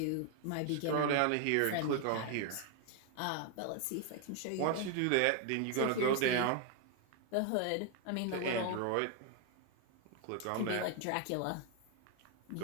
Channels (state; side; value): different; both; correlation 0.01